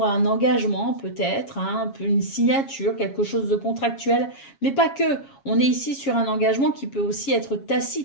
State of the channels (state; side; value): late; right; 7.3 ms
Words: un engagement peut-être, hein, une signature, quelque chose de contractuel, mais pas que. On est ici sur un engagement qui peut aussi être